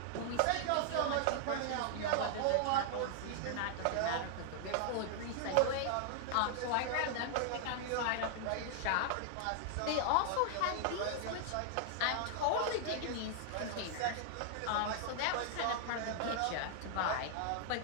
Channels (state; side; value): different; both; correlation -0.01